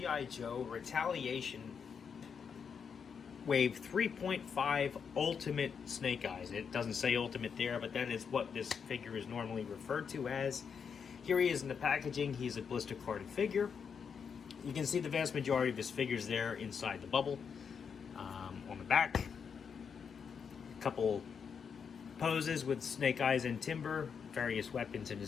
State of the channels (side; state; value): right; quieter; 6.6 dB